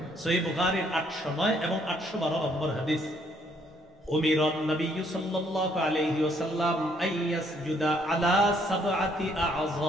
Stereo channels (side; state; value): both; normal; correlation 0.67